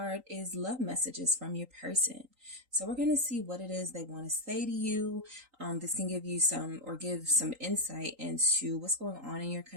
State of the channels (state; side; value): late; left; 3.8 ms